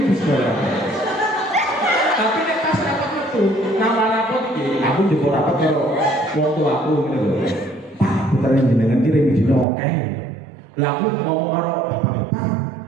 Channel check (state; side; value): drops out; left; at 9.7 s